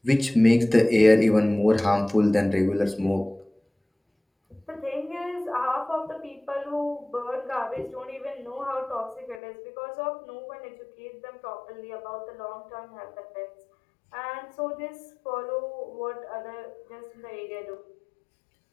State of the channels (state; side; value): drops out; right; at 9.4 s